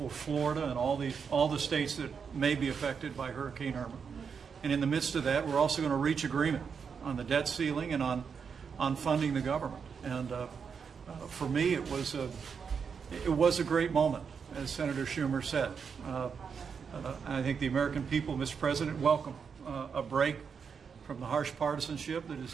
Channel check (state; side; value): quieter; left; 6.3 dB